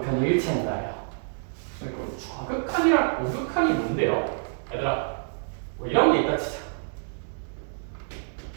일치한다예요. 좌극한이랑 우극한이 뭔데요? 얘들아, 뭐 이런 게 있다 치자.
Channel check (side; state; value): left; silent; digital silence